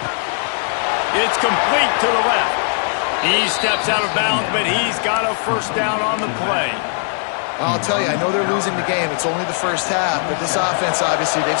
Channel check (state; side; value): silent; right; 61 dB below the other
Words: It's complete to the left. He steps out of bounds, but he's got a first down on the play. I'll tell you, I know they're losing the game. It's only the first half, but this offense, obviously, they've